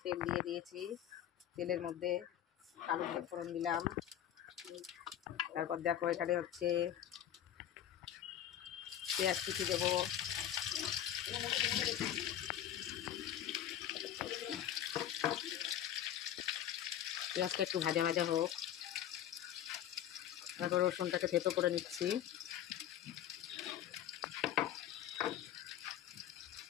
তেল দিয়ে দিয়েছি, তেলের মধ্যে কালো জিরে ফোড়ন দিলাম। তারপর দেখো এখানে হচ্ছে পেঁয়াজ কুচি দেবো। পেঁয়াজটা একটু ভাজা ভাজা হোক। তারপর রসুনটাকে থেতো করে নিচ্ছি।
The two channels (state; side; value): quieter; right; 11.0 dB